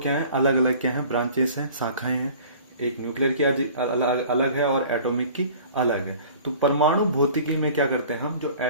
है, अलग अलग क्या है, ब्रांचेस हैं, शाखाएं हैं। एक न्यूक्लियर की अलग अलग है और एटॉमिक की अलग है। तो परमाणु भौतिकी में क्या करते हैं हम, जो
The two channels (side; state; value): both; inverted; correlation -0.47